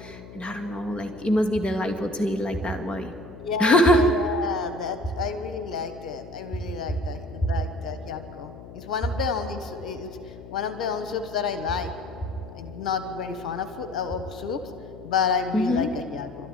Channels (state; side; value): noise; left; hum, 16 dB below the sound